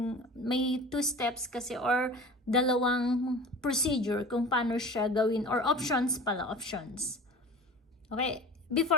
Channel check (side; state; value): both; normal; correlation 0.38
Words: may 2 steps kasi, or dalawang procedure kung paano siya gawin, or options. Okay,